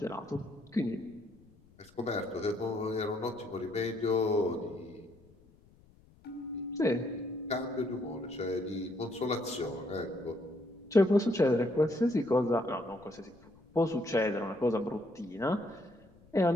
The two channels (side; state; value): left; noise; rumble, 27 dB below the sound